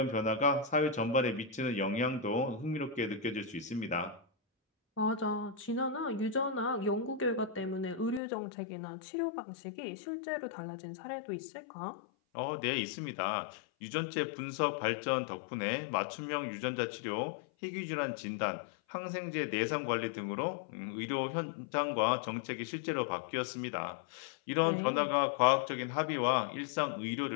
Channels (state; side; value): drops out; right; at 8.2 s